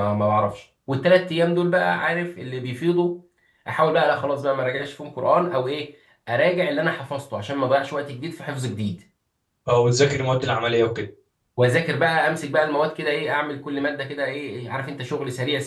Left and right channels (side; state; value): both; identical; correlation 1.00